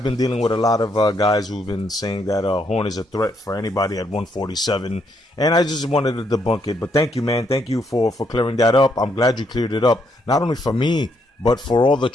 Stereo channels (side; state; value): both; normal; correlation 0.74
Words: been dealing with a lot of guys who've been saying that Horn is a threat for anybody at 147, and I just wanted to debunk it. But thank you, man. Thank you for clearing that up. I'm glad you cleared it up, not only for me, but for all the